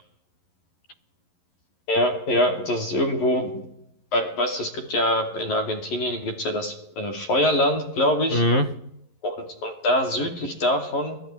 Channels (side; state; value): right; late; 11 ms